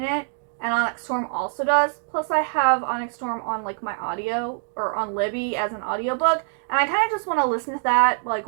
it, and Onyx Storm also does. Plus I have Onyx Storm on like my audio, or on Libby as an audiobook, and I kind of just want to listen to that like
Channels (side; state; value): left; silent; digital silence